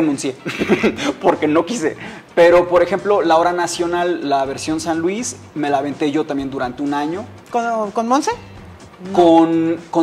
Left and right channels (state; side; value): identical; both; correlation 1.00